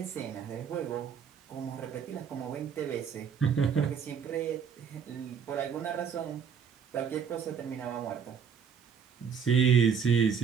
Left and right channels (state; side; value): quieter; left; 7.0 dB